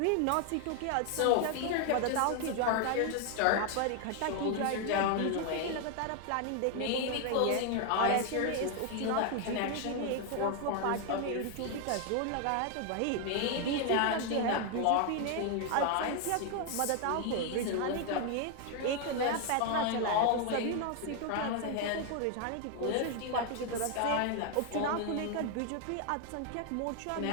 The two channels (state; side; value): different; both; correlation 0.00